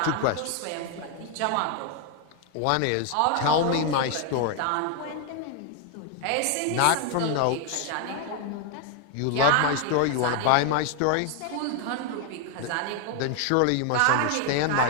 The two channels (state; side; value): different; both; correlation 0.00